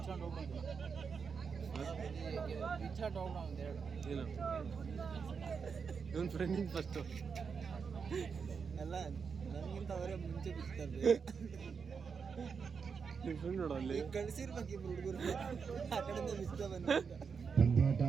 ಇವನ್ ಫ್ರೆಂಡಿಂಗ್ ಫಸ್ಟ್ ಅಲ್ಲ ನನಗಿಂತ ಅವರೇ ಮುಂಚೆ ಬಿಡ್ತಾರೆ ನಿಮ್ಮ ಫ್ರೆಂಡ್ ನೋಡು ಅಲ್ಲಿ ಕಳಿಸಿರ್ಬೇಕು ಇಬ್ರು ಹುಡುಗರು ಆ ಕಡೆಯಿಂದ ಬಿಸ್ತ ಬಂದ ಪಂದ್ಯಾಟ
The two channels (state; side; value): quieter; left; 5.9 dB